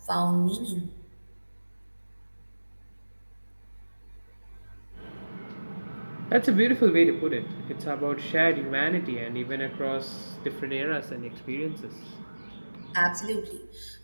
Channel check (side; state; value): both; inverted; correlation -1.00